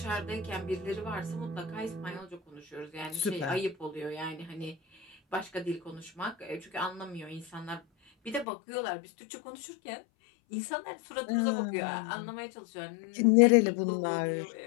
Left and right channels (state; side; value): drops out; right; at 8.5 s